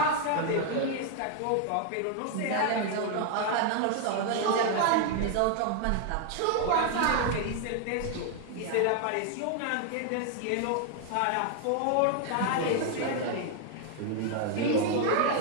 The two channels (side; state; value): both; different; correlation 0.00